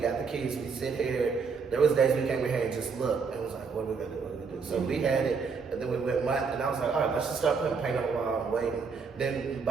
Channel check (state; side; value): quieter; left; 5.4 dB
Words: the keys, we sit here, there was days we came in here and just looked, and was like, what are we gonna do, what are we gonna do? So we had it, and then we went month, and I was like, all right, let's just start putting paint on the wall and waiting. Then